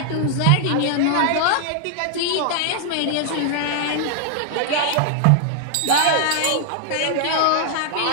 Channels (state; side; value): different; both; correlation 0.00